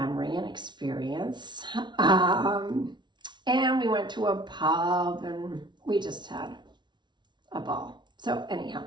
and experience. And we went to a pub and we just had a ball. So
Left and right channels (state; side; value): late; left; 0.22 ms